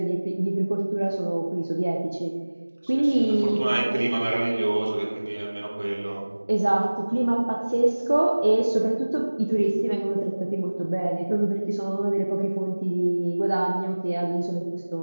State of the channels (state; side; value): inverted; both; correlation -1.00